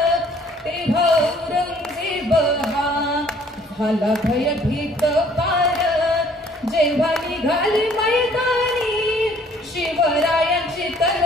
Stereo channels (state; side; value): normal; both; correlation 0.59